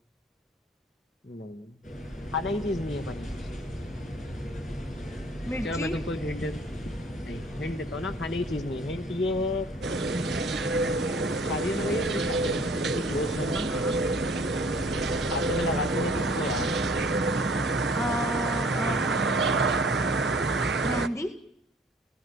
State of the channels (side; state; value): both; normal; correlation 0.54